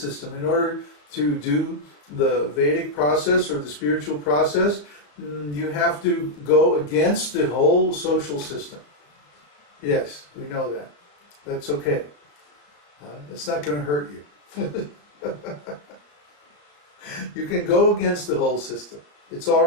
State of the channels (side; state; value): right; late; 34 ms